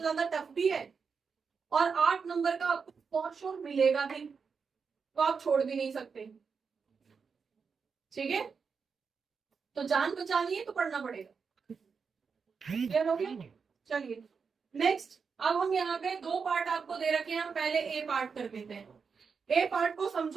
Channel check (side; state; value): left; quieter; 5.6 dB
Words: ज्यादा टफ भी है, और 8 नंबर का आपको फॉर श्योर मिलेगा भी, तो आप छोड़ भी नहीं सकते। ठीक है, तो जान बचानी है तो पढ़ना पड़ेगा। क्लियर हो गया? चलिए नेक्स्ट, अब हम यहाँ पे दो पार्ट आपको दे रखे हैं, हम पहले ए पार्ट कर देते हैं। ए पार्ट को